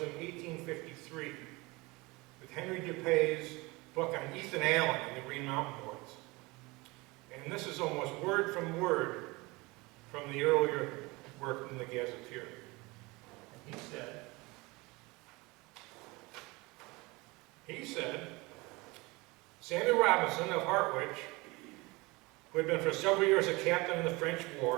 in 1853 with Henry Dupay's book on Ethan Allen and the Green Mountain Boys. And this is almost word from word from the earlier work in the Gazetteer. And he said, Samuel Robinson of Hartwich, who had been for several years a captain in the French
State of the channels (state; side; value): quieter; left; 23.9 dB